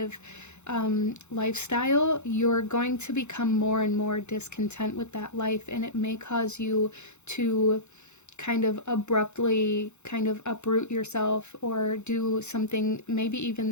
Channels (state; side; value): late; right; 0.83 ms